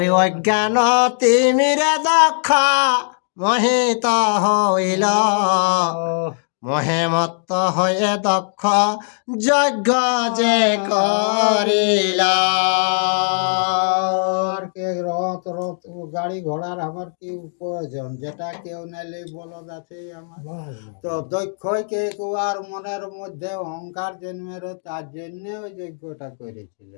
অজ্ঞান তিমিরে দক্ষ মোহিত হইল, মহে মত্ত হয়ে দক্ষ যজ্ঞ যে করিল। আর কে রথ রথ গাড়ি ঘোড়ার আমার কি প্রয়োজন, যেটা কেউ নাইলে বলদ আছে আমার। বাহ তো দক্ষ কে আর মনের মধ্যে অহংকার জন্মের, তার জন্য ওই যজ্ঞটা করেছিল।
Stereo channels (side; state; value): right; silent; digital silence